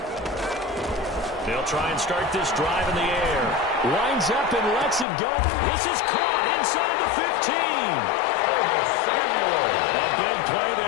They'll try and start this drive in the air. Winds up and lets it go. This is caught inside the 15. A big play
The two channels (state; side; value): drops out; right; at 5.1 s